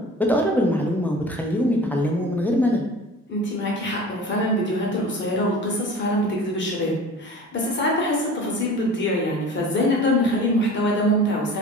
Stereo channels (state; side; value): normal; both; correlation 0.40